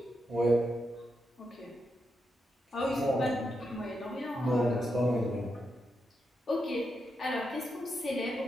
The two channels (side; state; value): both; normal; correlation 0.84